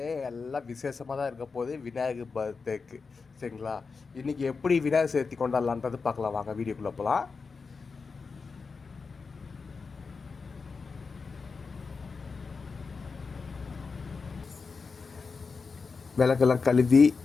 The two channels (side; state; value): right; quieter; 4.8 dB